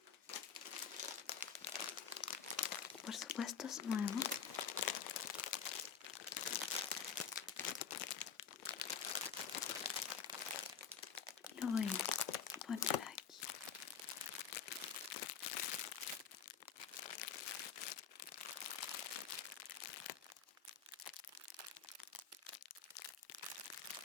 Por supuesto es nuevo. Lo voy a poner aquí.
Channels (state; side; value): quieter; right; 7.1 dB